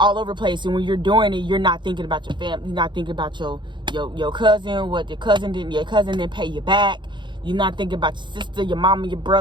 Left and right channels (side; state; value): left; late; 0.23 ms